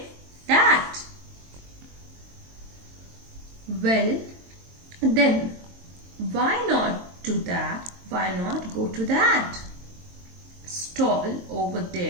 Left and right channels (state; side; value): late; left; 22 ms